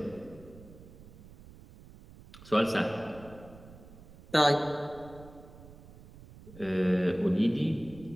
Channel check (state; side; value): noise; right; rumble, 19 dB below the sound